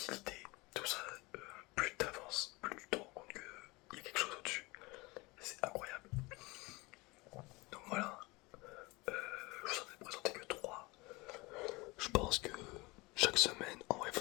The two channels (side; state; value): right; quieter; 24.0 dB